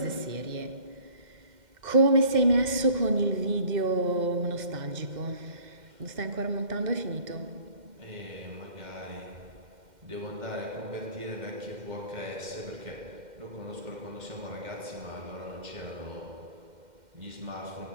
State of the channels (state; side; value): late; left; 2.1 ms